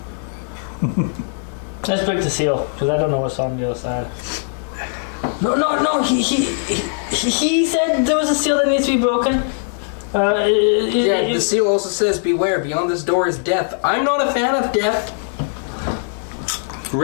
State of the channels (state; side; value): silent; right; 58 dB below the other